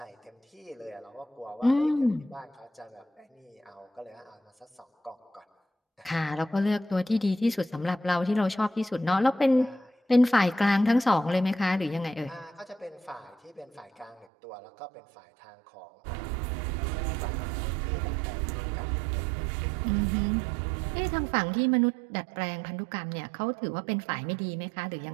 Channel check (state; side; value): drops out; left; at 14.2 s